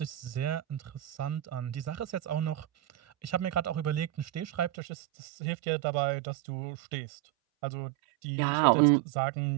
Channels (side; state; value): left; drops out; at 4.7 s